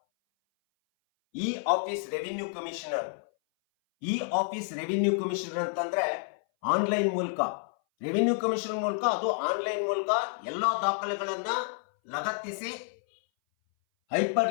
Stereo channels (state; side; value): silent; right; 58 dB below the other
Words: ಈ ಆಫೀಸ್ ರೆವಿನ್ಯೂ ಕಮಿಷನರ್ ಅಂತಂದ್ರೆ ಆನ್ಲೈನ್ ಮೂಲಕ ರೆವಿನ್ಯೂ ಕಮಿಷನ್ ಮೂಲಕ ಅದು ಆನ್ಲೈನ್ ಮೂಲಕ ಎಲ್ಲಾ ದಾಖಲೆಗಳನ್ನ ಲಗತ್ತಿಸಿ ಹೈಪರ್